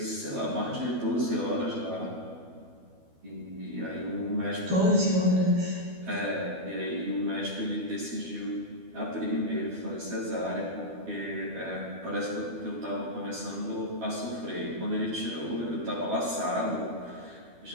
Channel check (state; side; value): late; left; 12 ms